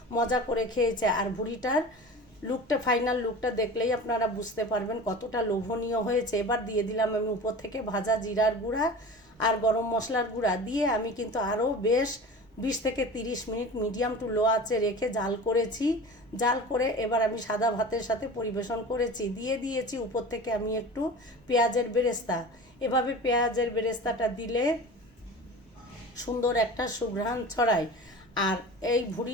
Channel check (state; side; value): normal; both; correlation 0.35